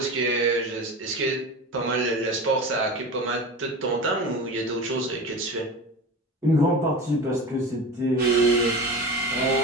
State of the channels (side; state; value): both; normal; correlation 0.30